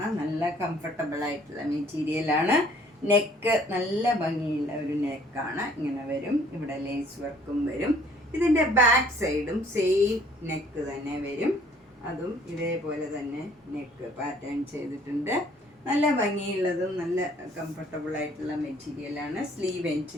നല്ല കംഫർട്ടബിൾ ആയിട്ടുള്ള മെറ്റീരിയലാണ്. നെക്ക് നല്ല ഭംഗിയുള്ള ഒരു നെക്കാണ്, ഇങ്ങനെ വരും. ഇവിടെ ലേസ് വർക്കും വരും. ഇതിൻ്റെ ബാക്ക് സൈഡും സെയിം നെക്ക് തന്നെ വരും, അതും ഇതേപോലെ തന്നെ നെക്ക് പാറ്റേൺ ചെയ്തിട്ടുണ്ട്. നല്ല ഭംഗിയുള്ളതും നല്ല കംഫർട്ടബിൾ ആയിട്ടുള്ള മെറ്റീരിയലാണ്. സ്ലീവ്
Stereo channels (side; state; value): both; normal; correlation 0.58